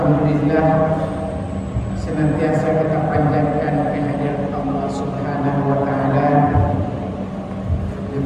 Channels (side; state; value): both; identical; correlation 1.00